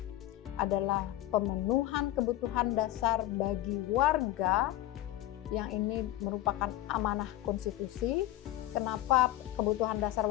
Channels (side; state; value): right; quieter; 14.7 dB